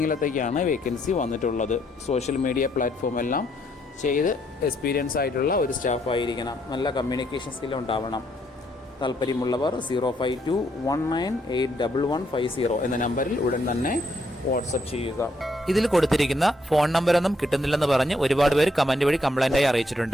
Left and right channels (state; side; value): normal; both; correlation 0.72